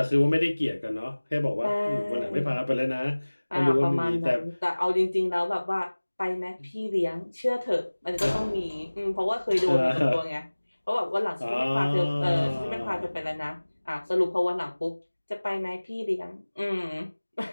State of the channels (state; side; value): inverted; both; correlation -1.00